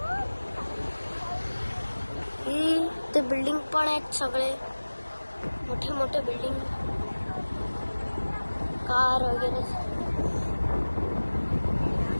ही ते बिल्डिंग पण आहेत, सगळे मोठे मोठे बिल्डिंग, कार वगैरे.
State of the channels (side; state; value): both; inverted; correlation -1.00